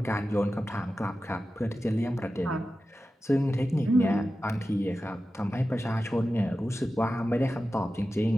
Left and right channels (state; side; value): normal; both; correlation 0.93